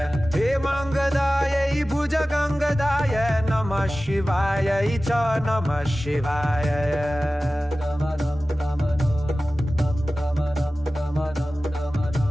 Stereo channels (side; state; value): both; normal; correlation 0.96